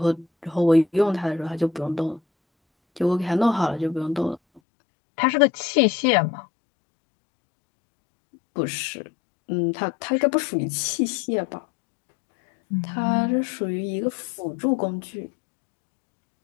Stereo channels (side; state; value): right; drops out; at 4.6 s